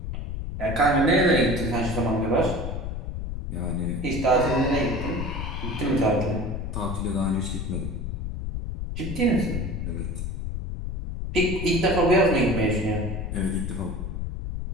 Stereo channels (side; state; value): left; noise; rumble, 5 dB below the sound